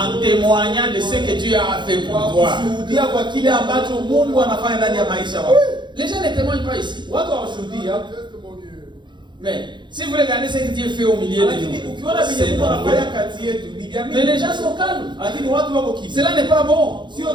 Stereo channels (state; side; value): late; left; 0.22 ms